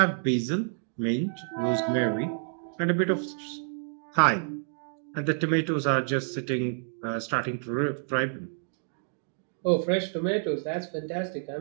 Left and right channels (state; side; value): silent; left; digital silence